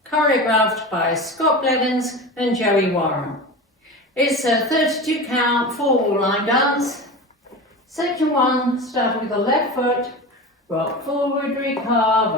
choreographed by Scott Blevins and Joey Warren. It's a 32 count 4-wall line dance. Section 1, start with the left foot, rock forward,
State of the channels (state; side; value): normal; both; correlation 0.29